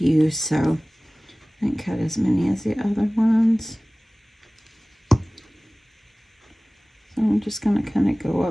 so I didn't cut as many as the other ones. So I'm just going to kind of go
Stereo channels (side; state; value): both; normal; correlation 0.98